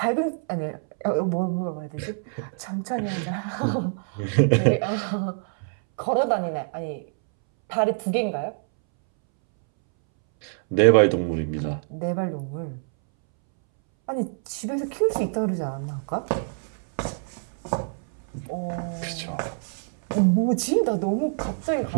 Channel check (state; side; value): silent; left; 61 dB below the other